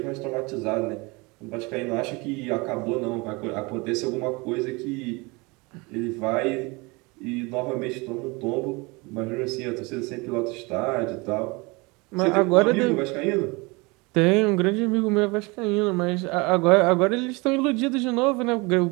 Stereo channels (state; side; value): quieter; left; 26.3 dB